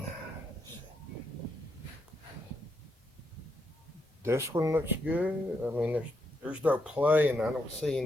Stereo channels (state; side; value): normal; both; correlation 0.79